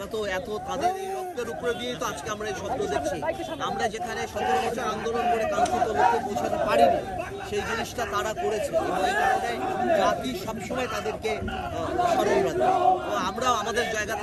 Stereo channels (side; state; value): both; identical; correlation 1.00